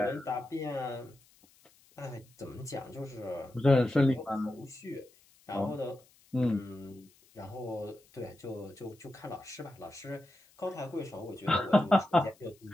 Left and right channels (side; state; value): left; noise; hiss, 29 dB below the sound